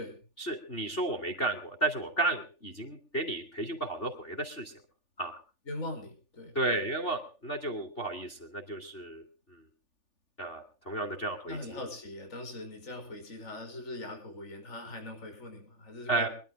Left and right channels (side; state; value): right; late; 3.4 ms